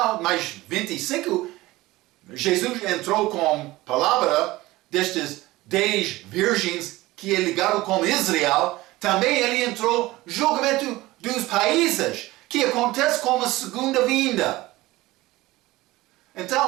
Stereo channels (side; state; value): left; quieter; 18.8 dB